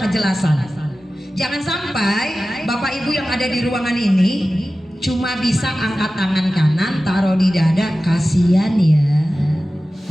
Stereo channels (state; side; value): normal; both; correlation 0.95